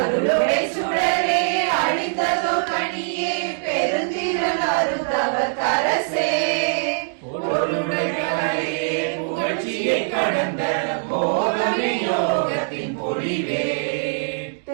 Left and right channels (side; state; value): left; silent; digital silence